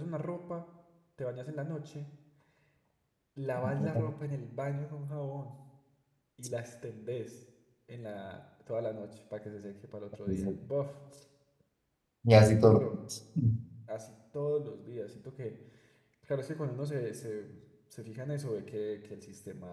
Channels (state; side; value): identical; both; correlation 1.00